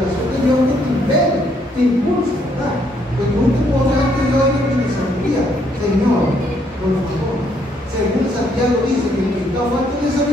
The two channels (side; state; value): both; normal; correlation 0.70